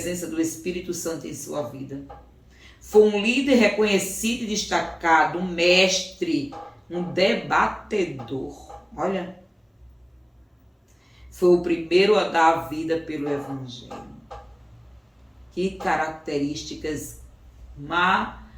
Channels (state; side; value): identical; both; correlation 1.00